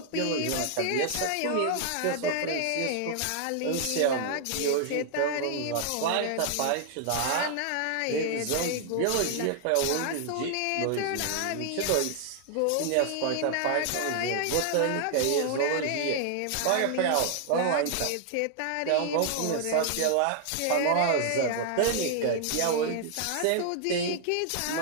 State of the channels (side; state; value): both; different; correlation 0.00